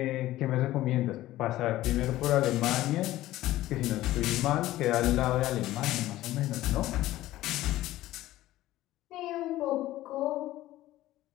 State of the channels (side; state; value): right; quieter; 15.5 dB